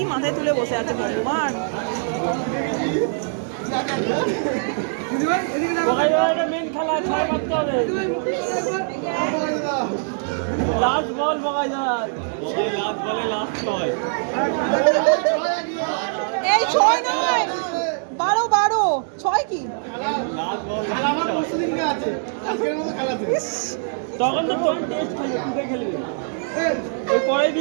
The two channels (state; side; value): silent; left; digital silence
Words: মাথায় তুলে বসে আছে ভগবান। মেন খেলা 6 মারতে হবে। লাস্ট বল বগাই দাঁড়ায়, লাস্ট বলে লাস্ট ছয়। এই 6 নয় 12 6 কি তখন তো তোর টেস্ট খেলবে, তুই খেলবি ওই পরে